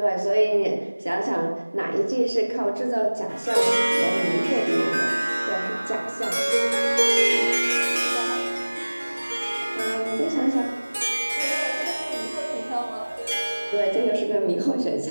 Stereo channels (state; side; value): inverted; both; correlation -1.00